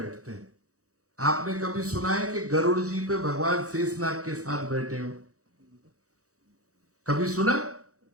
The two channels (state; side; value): late; left; 0.65 ms